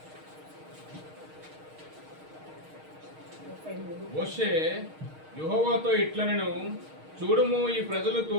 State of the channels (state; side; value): late; left; 6.4 ms